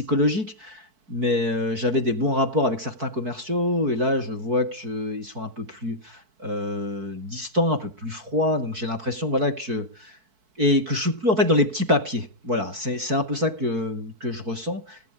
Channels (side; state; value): left; late; 4.6 ms